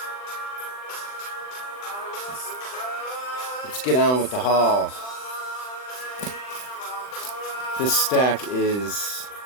Let's get on with the haul. This stack is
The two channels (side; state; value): right; late; 39 ms